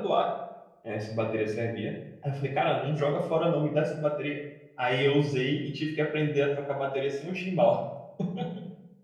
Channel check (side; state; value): both; identical; correlation 1.00